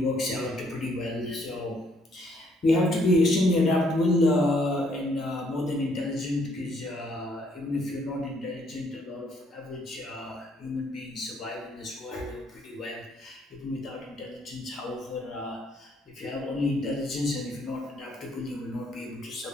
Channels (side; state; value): both; normal; correlation 0.68